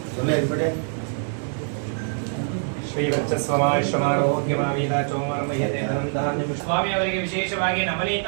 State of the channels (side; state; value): left; silent; 59 dB below the other